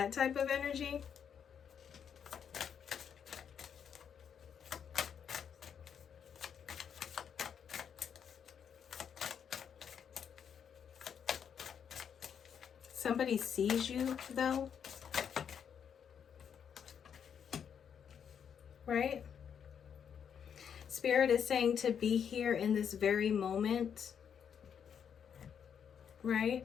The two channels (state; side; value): quieter; right; 7.8 dB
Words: type of energy. Somebody sees you, though, right? Spirit is saying to be here in this very moment, right?